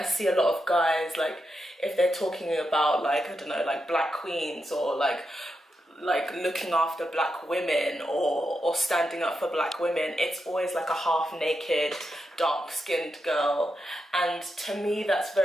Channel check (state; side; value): normal; both; correlation 0.86